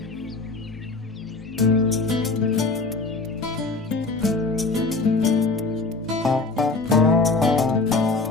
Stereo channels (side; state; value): right; quieter; 3.6 dB